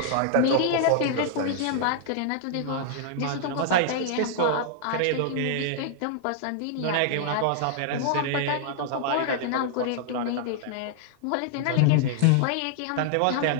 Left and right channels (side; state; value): both; different; correlation -0.01